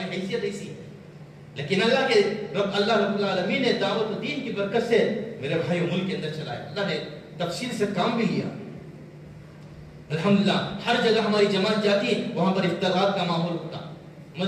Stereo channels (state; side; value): identical; both; correlation 1.00